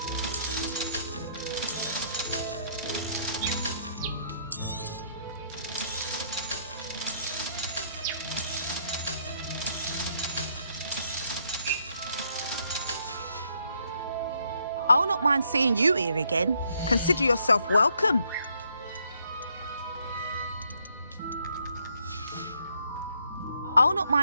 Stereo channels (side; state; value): both; inverted; correlation -0.71